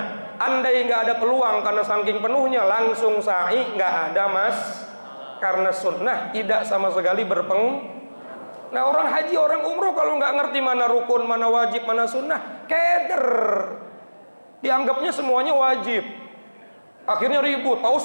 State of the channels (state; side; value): inverted; both; correlation -1.00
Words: Andai nggak ada peluang karena saking penuhnya langsung sa'i, nggak ada mas, karena sunnah tidak sama sekali Nah orang haji, orang umroh kalau nggak ngerti mana rukun, mana wajib, mana sunnah, keder. Dianggapnya semuanya wajib. Akhirnya ribut, Pak